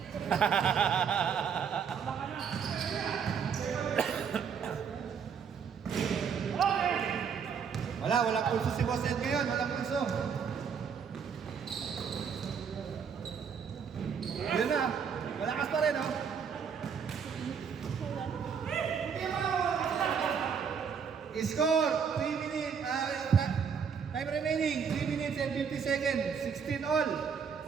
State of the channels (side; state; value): left; quieter; 6.8 dB